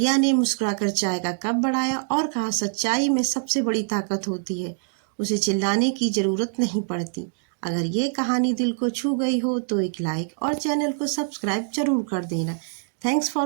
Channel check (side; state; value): left; silent; 62 dB below the other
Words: ने मुस्कुराकर चाय का कप बढ़ाया और कहा, सच्चाई में सबसे बड़ी ताकत होती है, उसे चिल्लाने की जरूरत नहीं पड़ती। अगर ये कहानी दिल को छू गई हो तो एक लाइक और चैनल को सब्सक्राइब जरूर कर देना। Thanks